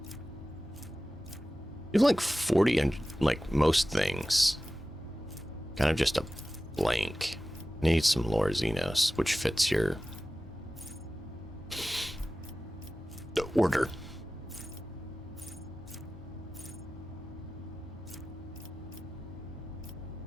You have like 40 and like most things. Kind of just a blank. Need some Lore Xenos, which fits your order.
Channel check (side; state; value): both; normal; correlation 0.95